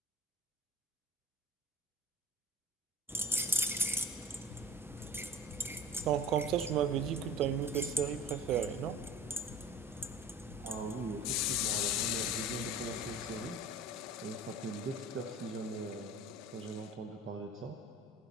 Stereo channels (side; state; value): both; normal; correlation 0.39